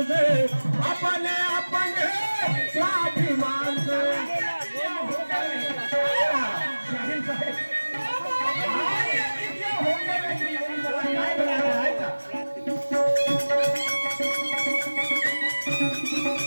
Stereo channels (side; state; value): both; inverted; correlation -1.00